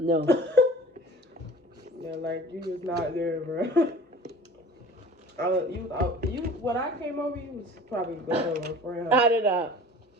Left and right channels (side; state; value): both; normal; correlation 0.43